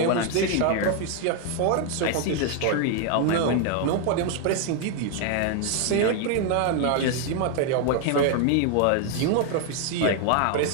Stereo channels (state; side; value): different; both; correlation 0.00